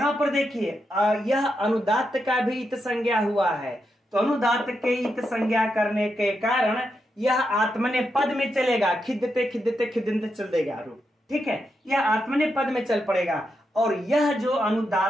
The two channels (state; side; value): normal; both; correlation 0.84